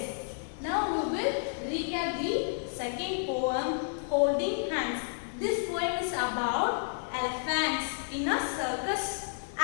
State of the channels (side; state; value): right; silent; 57 dB below the other